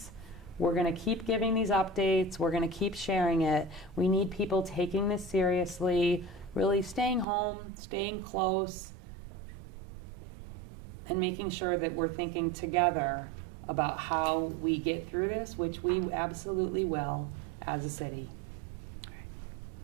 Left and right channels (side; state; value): left; drops out; at 7.2 s